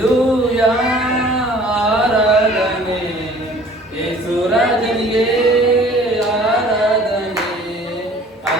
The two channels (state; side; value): normal; both; correlation 0.51